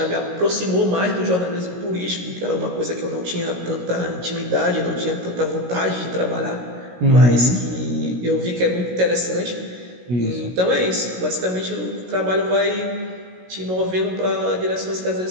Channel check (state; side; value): late; left; 16 ms